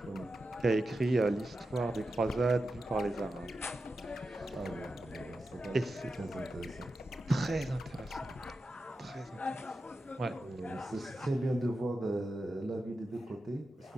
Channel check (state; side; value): normal; both; correlation 0.90